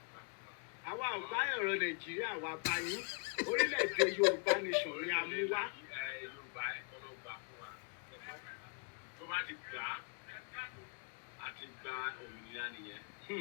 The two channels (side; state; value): right; quieter; 38.3 dB